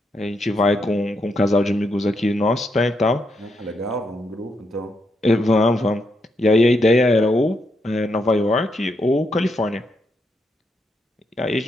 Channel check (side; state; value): both; normal; correlation 0.80